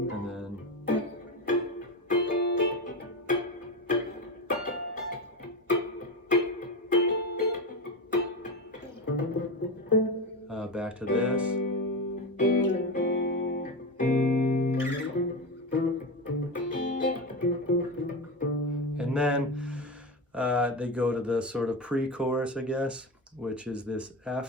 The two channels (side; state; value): both; normal; correlation 0.19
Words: and then back to this. And then they go to the sort of pre-chorus, I guess, which is this